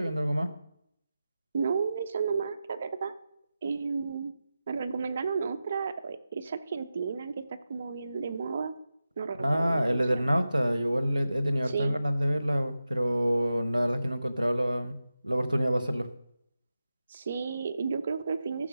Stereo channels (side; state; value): both; inverted; correlation -0.92